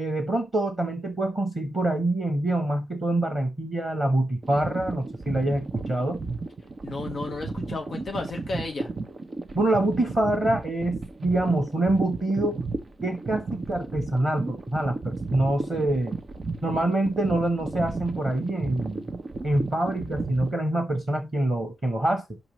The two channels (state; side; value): normal; both; correlation 0.87